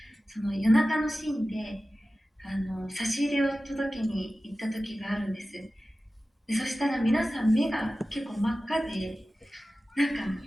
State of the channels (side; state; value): both; normal; correlation 0.95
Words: その夜中のシーンで差し入れを届けに行った時があるんです。でそしたら皆さん目が結構真っ赤で、なんか